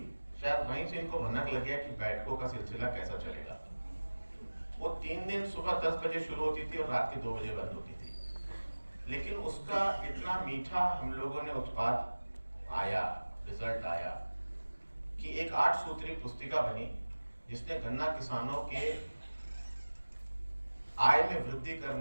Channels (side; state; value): both; inverted; correlation -1.00